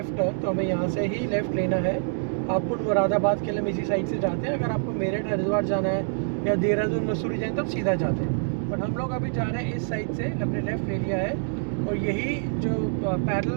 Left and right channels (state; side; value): silent; left; digital silence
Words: टर्न, तो हमें यहाँ से ही लेफ़्ट लेना है। हापुड़ मुरादाबाद के लिए हम इसी साइड से जाते हैं। अगर आपको मेरठ हरिद्वार जाना है या देहरादून मसूरी जाए तो आप सीधा जाते हैं, बट हम लोग अभी जा रहे हैं इस साइड से, हमने लेफ़्ट ले लिया है और यही जो